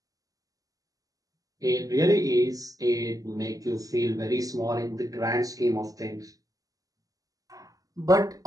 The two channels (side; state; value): left; late; 0.17 ms